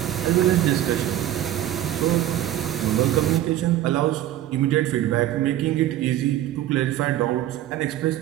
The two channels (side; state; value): left; quieter; 12.9 dB